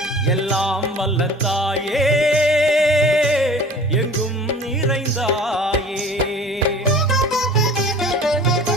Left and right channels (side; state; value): both; normal; correlation 0.44